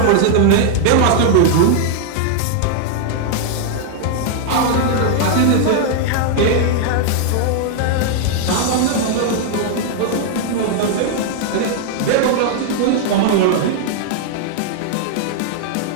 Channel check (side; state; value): both; different; correlation 0.00